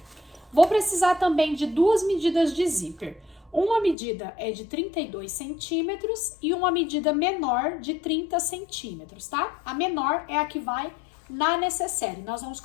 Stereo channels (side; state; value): right; drops out; at 4.0 s